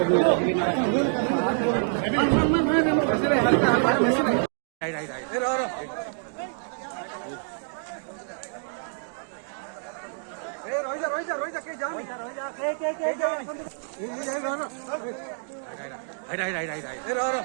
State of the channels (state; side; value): silent; left; digital silence